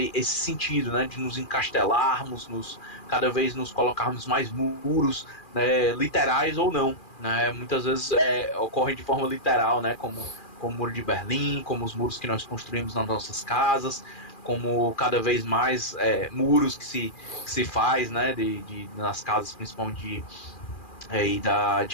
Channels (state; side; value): late; right; 2.4 ms